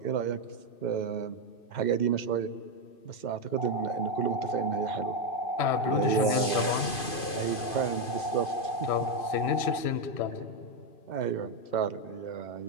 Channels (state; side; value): late; right; 2.5 ms